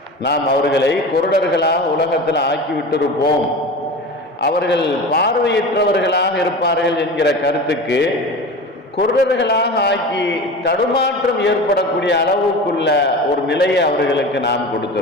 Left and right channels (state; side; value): normal; both; correlation 0.31